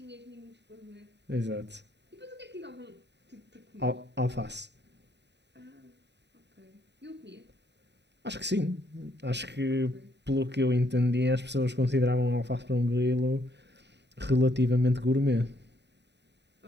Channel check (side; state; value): left; late; 0.50 ms